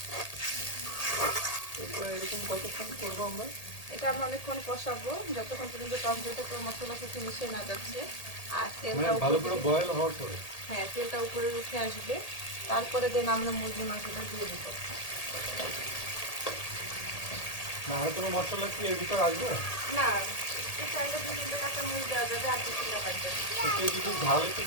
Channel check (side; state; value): right; late; 1.8 ms